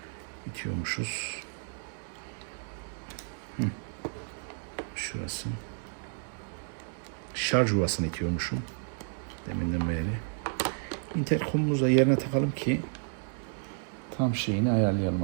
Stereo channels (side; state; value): left; silent; 57 dB below the other